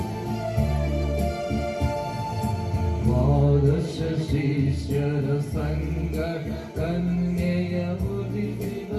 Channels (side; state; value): both; identical; correlation 1.00